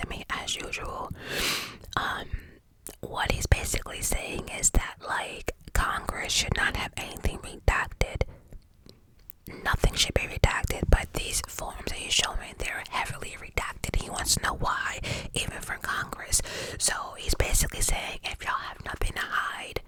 me as usual. What he's basically saying is that, like, Congress should not have anything redacted. Nothing should be redacted, but these forms that he's showing, they're heavily redacted. He wants to know why, even from Congress. So he's basically saying, if y'all have nothing to hide,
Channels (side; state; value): both; identical; correlation 1.00